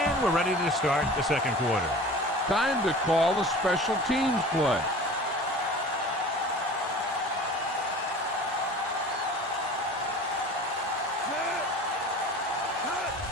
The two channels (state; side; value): normal; both; correlation 0.40